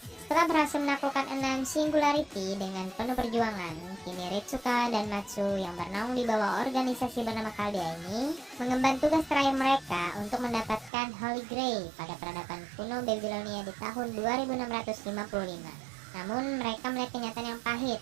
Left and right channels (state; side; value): drops out; left; at 10.9 s